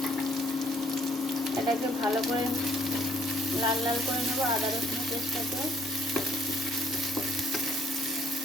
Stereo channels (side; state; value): both; normal; correlation 0.65